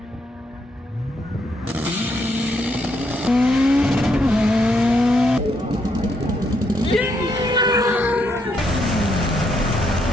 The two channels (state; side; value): normal; both; correlation 0.76